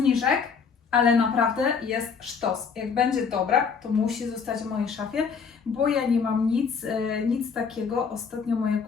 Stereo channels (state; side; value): quieter; right; 5.9 dB